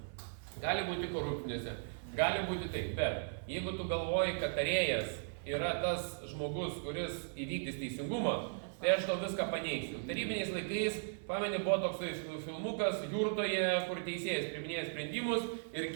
Gali būti korupcinėse, gali būti taip, bet jeigu tu galvoji, kad tarėjas yra tas žmogus, kuris įvykdys teisingumą, tai aš tau viską paneigsiu. Tarybiniais laikais, pameni, buvo toksai filmukas Jurtoje, kur teisėjas priiminėja sprendimus ir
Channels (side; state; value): left; silent; 53 dB below the other